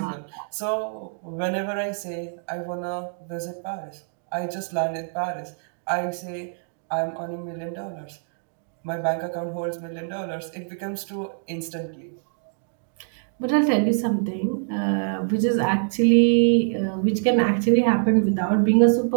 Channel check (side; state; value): left; silent; digital silence